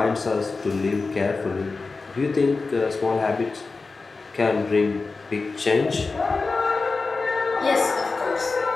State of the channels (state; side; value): quieter; right; 4.0 dB